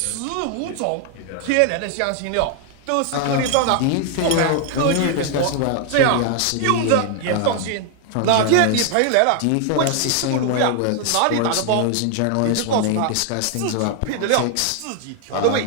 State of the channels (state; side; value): different; both; correlation 0.00